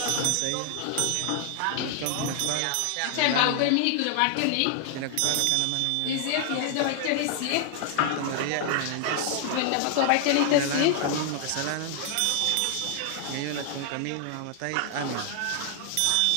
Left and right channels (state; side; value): different; both; correlation 0.00